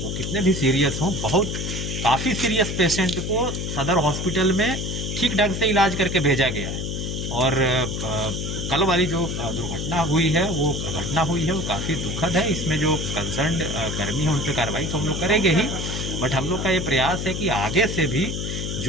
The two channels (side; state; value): left; noise; hum, 3 dB below the sound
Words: वो कितने भी सीरियस हों, काफ़ी सीरियस पेशेंट को सदर हॉस्पिटल में ठीक ढंग से इलाज करके भेजा गया है। और कल वाली जो दुर्घटना हुई है, वो घटना हुई है, वो काफ़ी दुखद है। इसमें जो कंसर्न कर्मी है उन पर कार्रवाई तो हम लोग करेंगे ही, बट हम लोग का ये प्रयास है कि आगे से भी